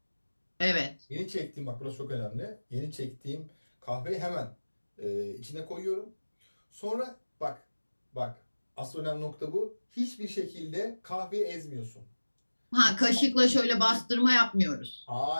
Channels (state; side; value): inverted; both; correlation -1.00